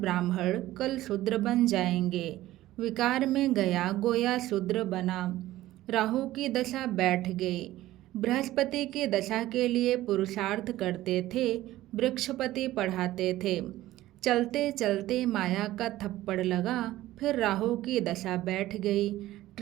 कल शूद्र बन जाएंगे। विकार में गया गोया शूद्र बना। राहु की दशा बैठ गई। बृहस्पति की दशा के लिए पुरुषार्थ करते थे, वृक्षपति पढ़ाते थे। चलते चलते माया का थप्पड़ लगा, फिर राहु की दशा बैठ गई,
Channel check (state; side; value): quieter; left; 15.6 dB